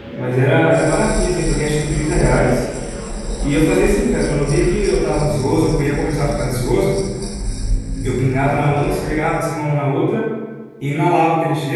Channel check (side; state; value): both; identical; correlation 1.00